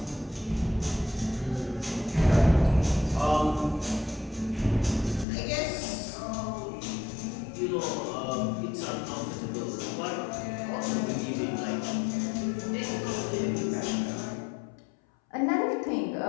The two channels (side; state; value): right; drops out; at 5.2 s